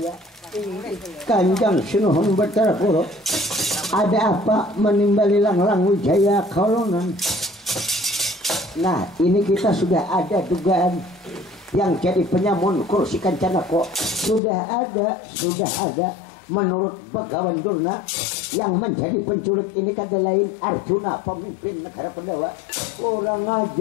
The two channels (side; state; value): right; drops out; at 14.4 s